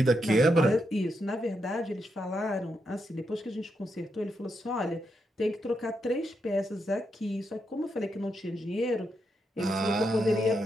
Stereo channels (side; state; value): both; normal; correlation 0.82